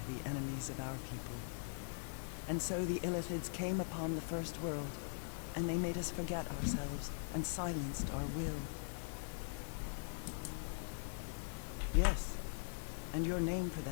the enemies of our people. And so the Illithids came upon the first world, and they made us forget ourselves and silenced our will. Yes, and your name for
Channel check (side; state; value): right; silent; digital silence